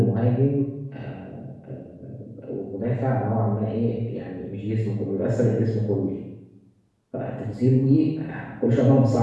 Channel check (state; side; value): identical; both; correlation 1.00